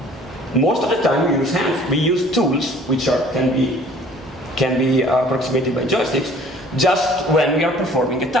Most of the time, we use hands. We use tools which can be approximated by joysticks, just when we are performing a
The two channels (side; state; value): both; normal; correlation 0.52